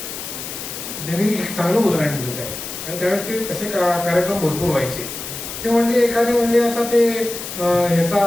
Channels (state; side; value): noise; left; hiss, 8 dB below the sound